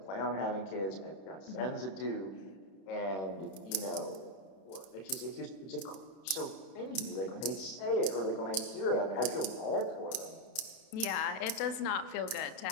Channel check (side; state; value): right; late; 31 ms